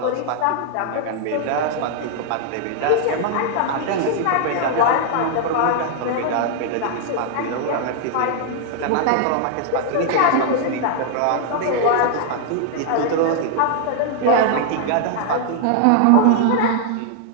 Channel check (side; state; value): both; different; correlation 0.00